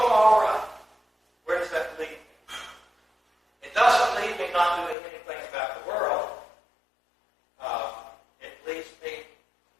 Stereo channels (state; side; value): drops out; right; at 5.0 s